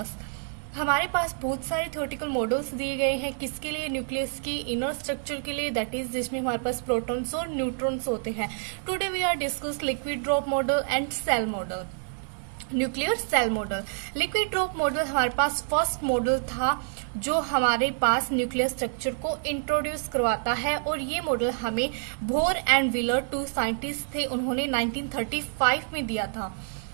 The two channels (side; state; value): left; silent; 60 dB below the other